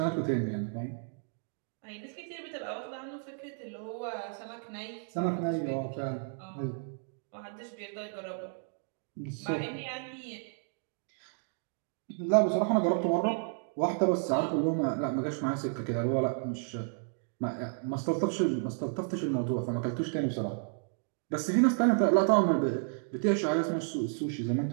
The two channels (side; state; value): left; silent; 56 dB below the other